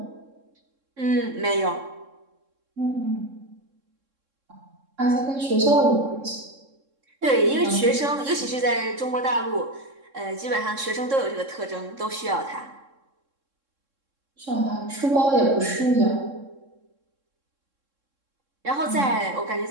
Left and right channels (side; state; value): left; late; 3.7 ms